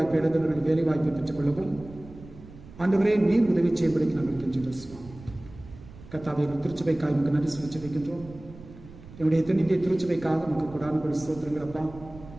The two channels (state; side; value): noise; right; rumble, 18 dB below the sound